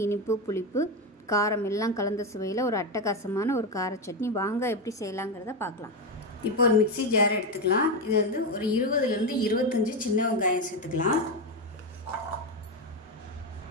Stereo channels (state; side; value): normal; both; correlation 0.11